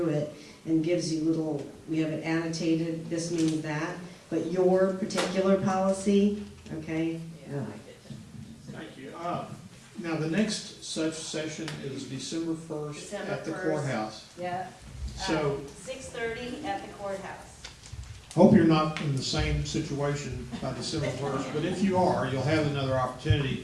it and gives you we have it annotated, this means that, but your particular policy, okay? Yeah, no. I get that. Thank you. Now, the next such session is December 1st December at the 1st. courthouse. Yeah. So, 6:30 at the courthouse. hope you're not in the same situation by December 1st, but if you are, you'll have another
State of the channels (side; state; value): both; identical; correlation 1.00